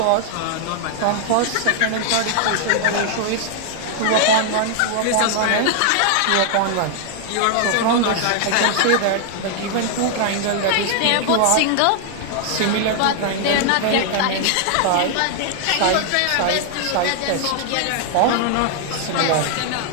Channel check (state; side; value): different; both; correlation 0.00